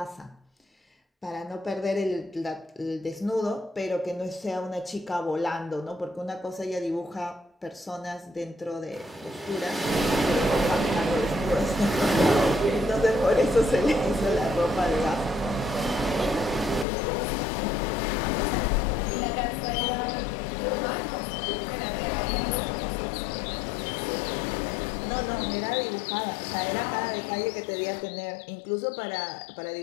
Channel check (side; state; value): right; drops out; at 16.9 s